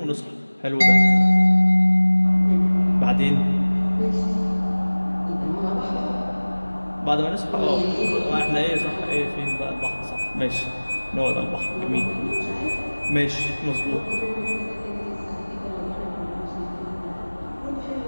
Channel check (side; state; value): both; inverted; correlation -1.00